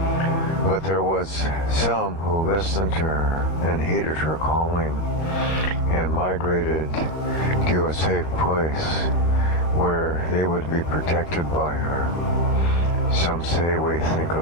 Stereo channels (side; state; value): right; late; 13 ms